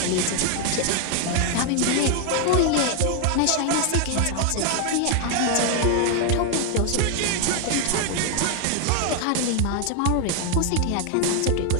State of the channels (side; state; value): both; different; correlation 0.00